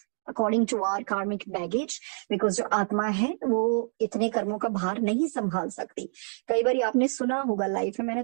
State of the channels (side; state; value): left; silent; 60 dB below the other